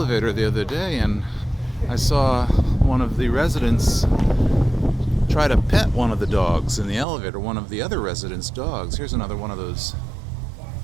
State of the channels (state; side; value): drops out; left; at 7.1 s